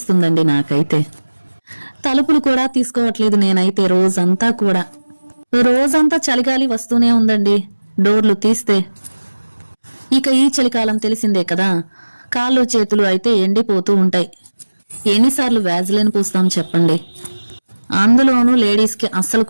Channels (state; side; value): inverted; both; correlation -1.00